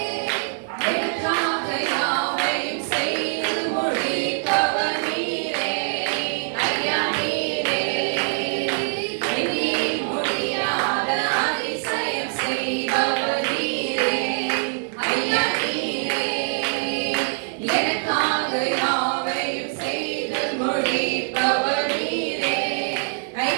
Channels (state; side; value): silent; left; 63 dB below the other